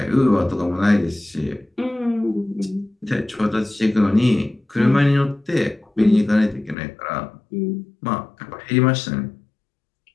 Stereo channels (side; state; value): right; drops out; at 6.8 s